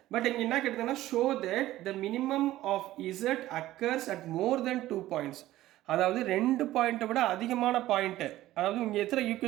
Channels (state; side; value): quieter; left; 15.2 dB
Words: But இங்கே என்ன கேட்டிருந்தாங்கன்னா show that the minimum of z occurs at more than 2 points. அதாவது 2 பாயிண்ட்டை விட அதிகமான பாயிண்ட்டு. அதாவது இங்கே எத்தனை